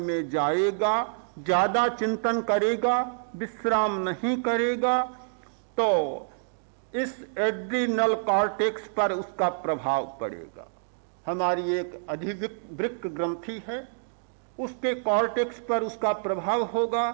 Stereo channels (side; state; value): left; silent; digital silence